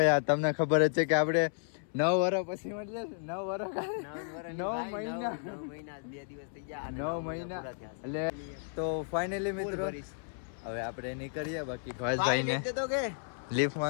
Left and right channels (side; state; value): right; silent; 56 dB below the other